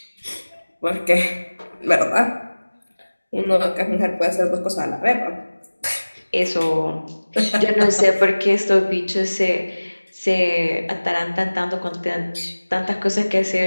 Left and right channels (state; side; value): inverted; both; correlation -1.00